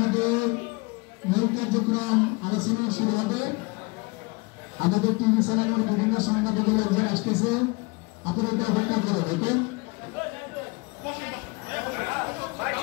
মূল কার্যক্রম আলোচনা শুরু হবে। আমাদের টিভি চ্যানেলের বিভিন্ন সংবাদগুলো একজন আসতেছে, আপনারা এটা অপেক্ষা করো। ওকে,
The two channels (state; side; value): quieter; right; 27.1 dB